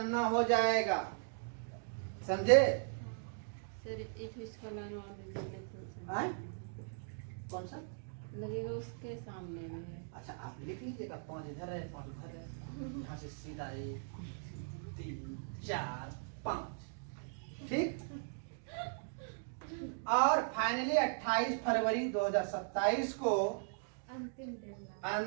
हो जाएगा। समझे? सर एक इसका लाइन और दीजिए तो आए? कौन सा लगेगा? उसके सामने में है। अच्छा आप लिख लीजिएगा, 5 इधर है, 5 उधर है, यहाँ से सीधा 1 3 4 5। ठीक। और फाइनली 28 फरवरी 2027 को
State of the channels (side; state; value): left; silent; digital silence